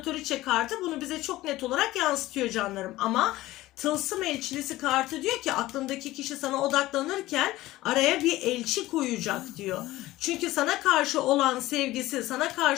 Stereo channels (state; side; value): quieter; right; 17.1 dB